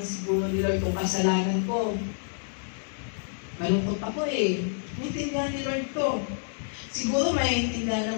siguro ni Lord kung kasalanan ko. Malungkot ako eh. Naiintindihan ni Lord to. Siguro maiintindihan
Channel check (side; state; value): right; silent; 59 dB below the other